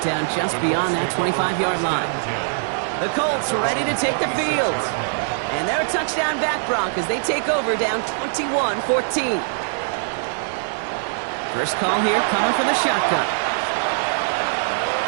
down just beyond that 25-yard line. The Colts ready to take the field. And they're a touchdown back, Brock, as they take over down 21-14. First call here coming from the shotgun.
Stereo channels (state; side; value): silent; left; digital silence